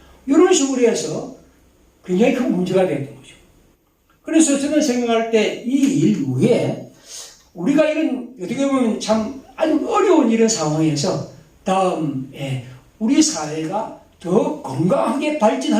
이런 식으로 해서 굉장히 큰 문제가 됐던 거죠. 그래서 저는 생각할 때 이 일 후에 우리가 이런 어떻게 보면 참 아주 어려운 이런 상황에서 다음에 우리 사회가 더 건강하게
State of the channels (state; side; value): identical; both; correlation 1.00